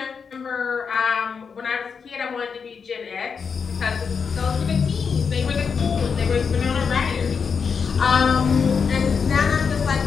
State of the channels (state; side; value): quieter; right; 5.9 dB